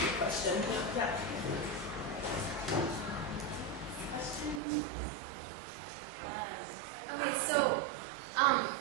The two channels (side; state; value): left; drops out; at 4.6 s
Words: your question. Yeah. Okay, so